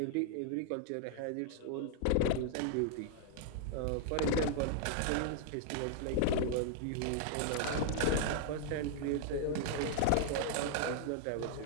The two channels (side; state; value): both; different; correlation 0.00